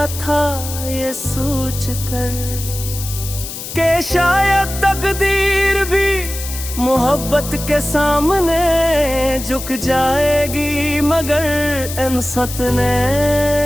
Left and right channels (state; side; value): noise; left; hiss, 9 dB below the sound